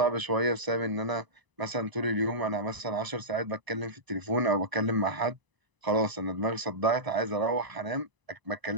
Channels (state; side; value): late; left; 1.0 ms